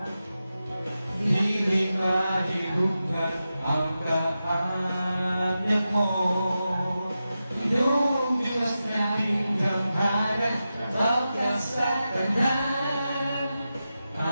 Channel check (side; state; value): both; inverted; correlation -0.91